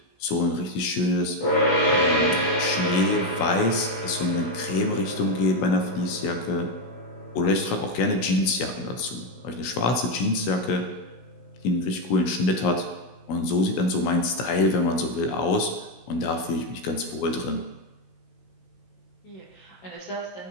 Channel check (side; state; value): right; late; 16 ms